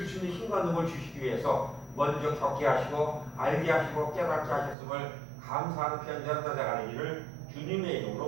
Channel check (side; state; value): left; drops out; at 4.8 s